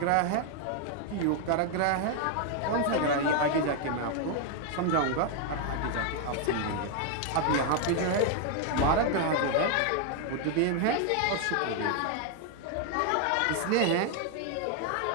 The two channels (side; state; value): both; different; correlation 0.00